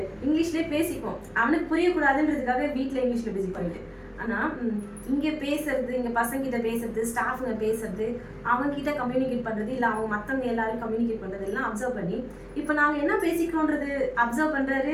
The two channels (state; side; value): identical; both; correlation 1.00